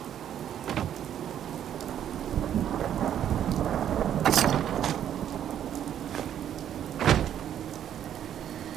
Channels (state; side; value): quieter; left; 10.1 dB